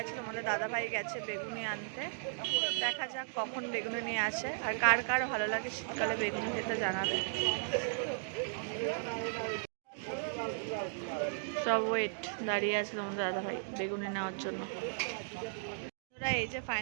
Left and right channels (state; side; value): silent; left; digital silence